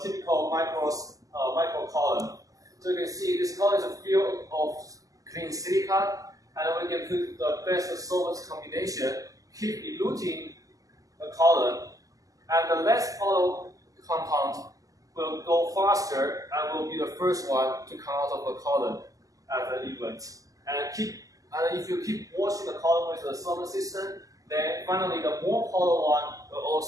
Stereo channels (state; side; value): late; left; 0.17 ms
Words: typical micro column. So you can see this column is a field of clean silica, and we can put the best solvent combination, keep eluting the column, and the less polar compound will go faster and will be the first one to come out of the column at the event. And if you keep washing the column with the solvent system, then finally the more polar one will